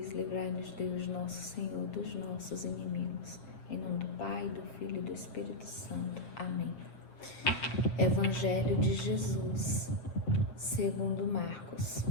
livrai-nos Deus nosso Senhor dos nossos inimigos. Em nome do Pai, do Filho e do Espírito Santo. Amém. Evangelho de Jesus, segundo Marcos.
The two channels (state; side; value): late; right; 7.5 ms